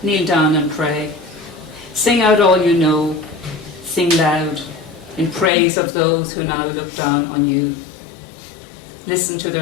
kneel down and pray. Sing out all you know, sing loud, in praise of those who now look down on you. Listen to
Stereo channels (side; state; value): right; drops out; at 5.5 s